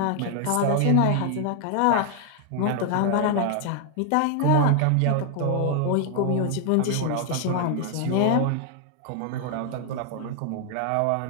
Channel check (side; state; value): both; different; correlation 0.00